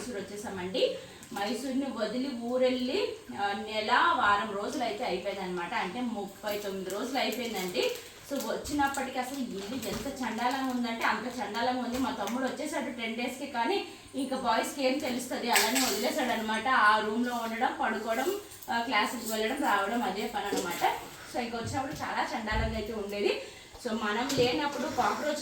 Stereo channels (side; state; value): both; identical; correlation 1.00